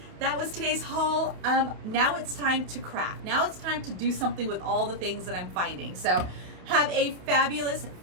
that was today's haul. Now it's time to craft. Now it's time to do something with all the things that I'm finding. So have a fabulous,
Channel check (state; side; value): late; left; 28 ms